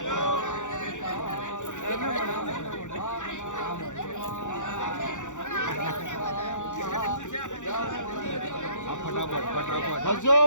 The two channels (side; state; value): right; late; 0.85 ms